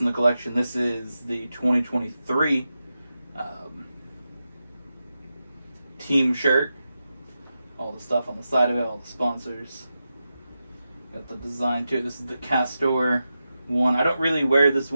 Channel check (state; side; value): inverted; both; correlation -0.90